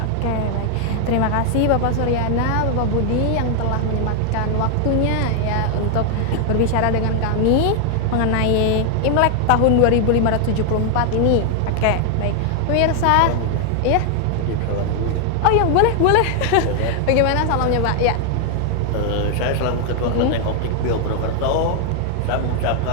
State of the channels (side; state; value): both; different; correlation 0.00